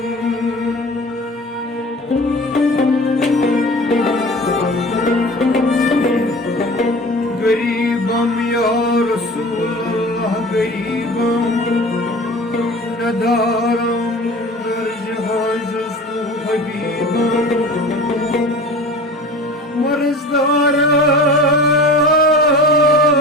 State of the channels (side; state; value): both; normal; correlation 0.39